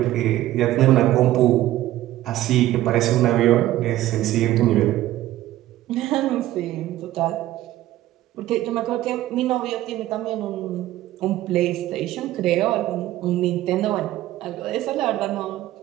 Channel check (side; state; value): left; quieter; 14.8 dB